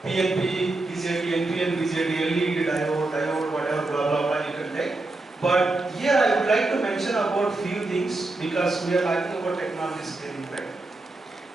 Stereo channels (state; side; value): quieter; left; 3.0 dB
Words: PNP, BJT, NPN, BJT, LED, diode, whatever, blah blah blah. You can take. But here I would like to mention about few things because we are talking about technology scaling, right?